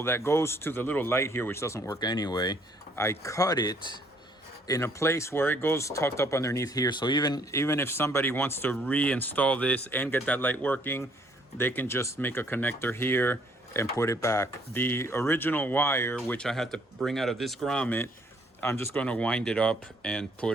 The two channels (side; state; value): both; normal; correlation 0.64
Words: that goes to the little light here, which doesn't work anyway, I cut it in a place where it goes tucked up underneath here. So even if somebody wants to reinstall this and get that light working, they can just make a connector here and put it back. The original wire, which I had to bring out of this grommet, I'm just going to wind it up and